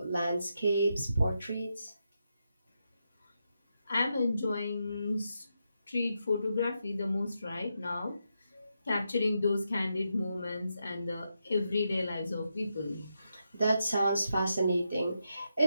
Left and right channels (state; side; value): inverted; both; correlation -0.84